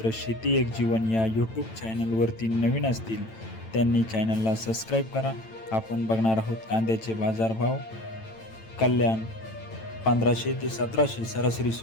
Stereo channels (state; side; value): late; right; 9.0 ms